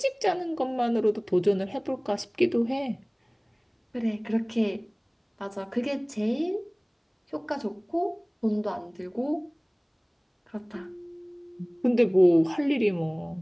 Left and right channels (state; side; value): identical; both; correlation 1.00